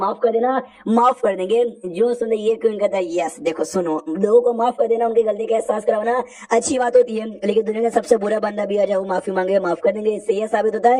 कर देना, माफ कर देंगे। जो सुन ये क्यों कहता है यस देखो सुनो, लोगों को माफ कर देना, उनकी गलती का एहसास करवाना अच्छी बात होती है, लेकिन दुनिया का सबसे बुरा बंदा भी आ जाए वो माफी मांगे माफ कर देंगे, इससे ये साबित होता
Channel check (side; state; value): both; identical; correlation 1.00